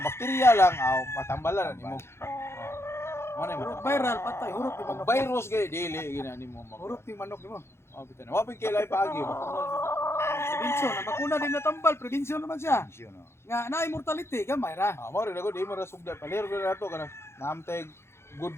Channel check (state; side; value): late; right; 0.12 ms